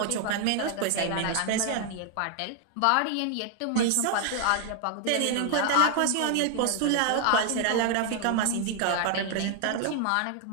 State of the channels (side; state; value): both; different; correlation 0.00